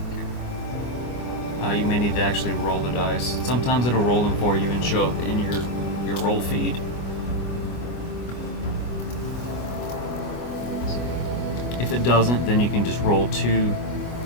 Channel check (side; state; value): right; late; 24 ms